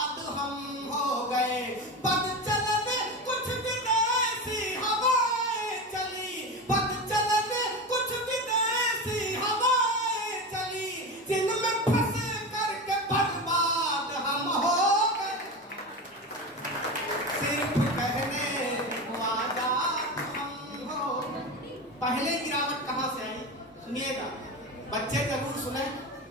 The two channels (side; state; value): both; normal; correlation 0.23